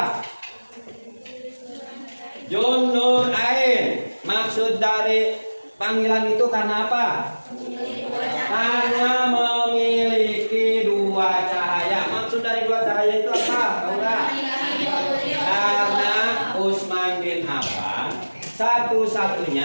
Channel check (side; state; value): both; inverted; correlation -1.00